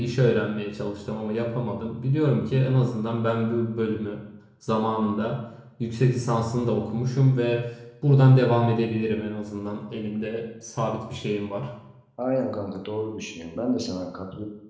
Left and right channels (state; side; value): identical; both; correlation 1.00